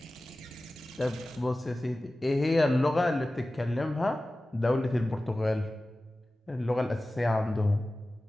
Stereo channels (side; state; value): both; normal; correlation 0.96